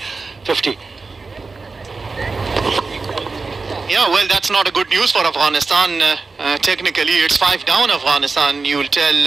50. Yeah, well, that's not a good news for Afghanistan. Technically, it's 5 down Afghanistan. You'll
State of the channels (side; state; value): left; quieter; 4.1 dB